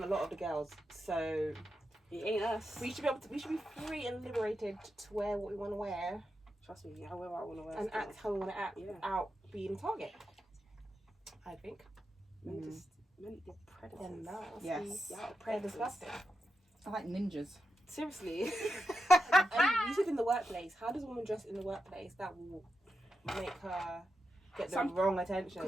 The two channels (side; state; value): both; normal; correlation 0.88